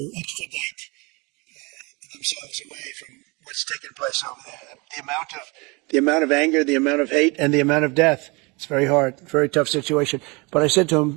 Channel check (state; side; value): quieter; left; 27.5 dB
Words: extradite themselves away from what's taking place over there. The amount of anger, the amount of hate, and the amount of death. It's very hard, very tough situation. But I said to